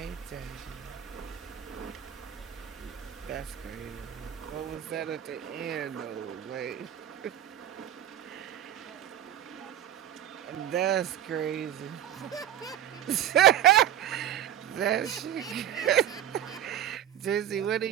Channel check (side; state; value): left; quieter; 11.0 dB